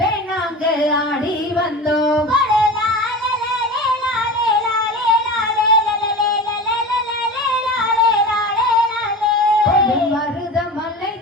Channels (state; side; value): normal; both; correlation 0.31